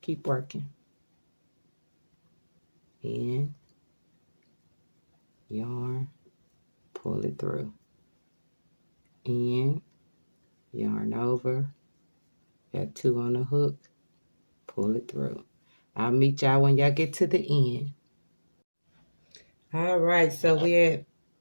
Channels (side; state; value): both; inverted; correlation -1.00